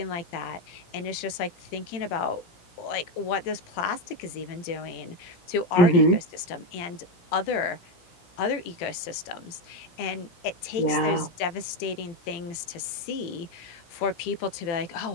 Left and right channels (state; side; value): late; right; 18 ms